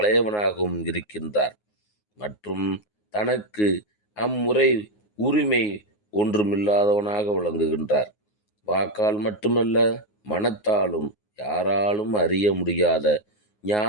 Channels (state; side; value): late; right; 9.5 ms